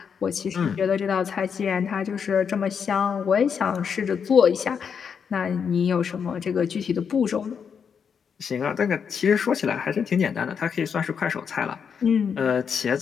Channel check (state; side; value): quieter; right; 6.8 dB